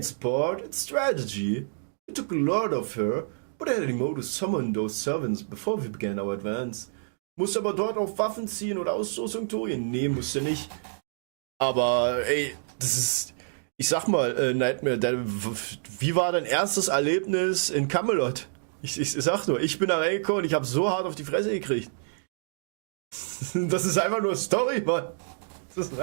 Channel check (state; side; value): silent; left; digital silence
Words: sport, it's strategy. We took a lot of her, but I had a mode to summon those servants before we began our advance. Musst aber dort auf Waffen ziehen oder Ausrüstung torien? Nee, musst du nicht. Aber, ey, das ist... Ich sag mal, Nightmare, wie war dein erstes Erlebnis in Camelot? Ich sag nur, ich bin da reingekommen und ich hab so hart auf die Fresse gekriegt. Das ist einfach nur Story, Mann. Das ist